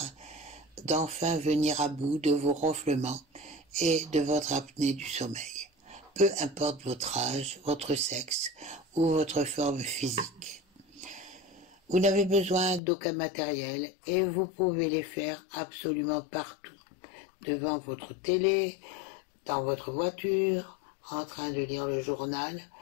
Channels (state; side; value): drops out; right; at 12.8 s